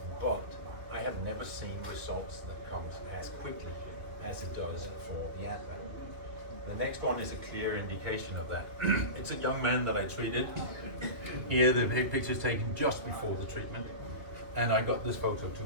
but I have never seen results that comes as quickly as it does for the Advalight. The next one is a clear indication of that. It's a young man that I treated. Here the picture is taken just before the treatment, and I got this photo 2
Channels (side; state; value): left; late; 2.5 ms